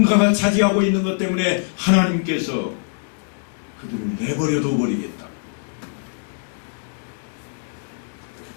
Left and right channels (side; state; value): right; silent; digital silence